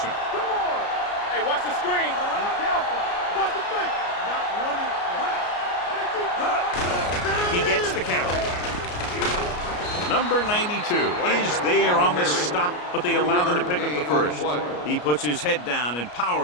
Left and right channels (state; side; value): late; right; 33 ms